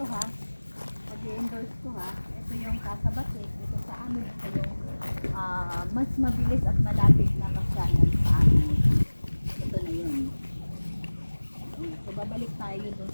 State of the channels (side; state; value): both; inverted; correlation -1.00